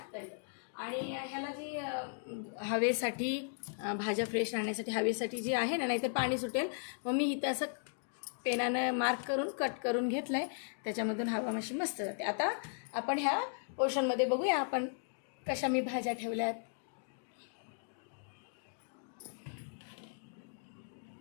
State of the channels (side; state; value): right; silent; digital silence